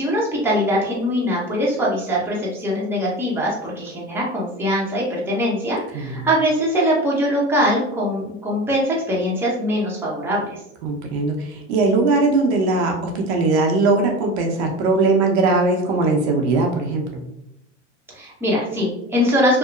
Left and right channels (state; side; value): normal; both; correlation 0.31